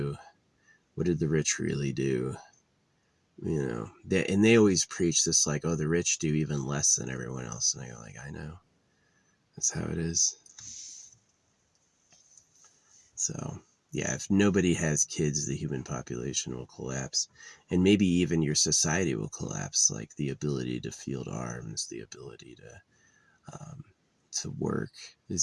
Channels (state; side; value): identical; both; correlation 1.00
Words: What did the rich really do? You know, they always preach this, like, oh, the rich do even less than everyone else. And I go, like, I know, that's how it is. So yeah, if nobody has kids, the human population will collapse, and maybe even your society will collapse. Like, the ability to field arms, the ability to work, is